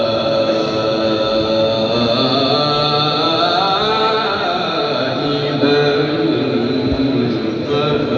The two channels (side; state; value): both; identical; correlation 1.00